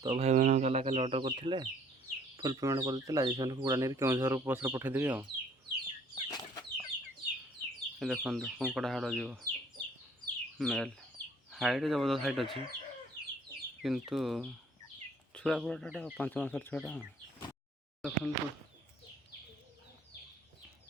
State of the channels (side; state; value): both; normal; correlation 0.57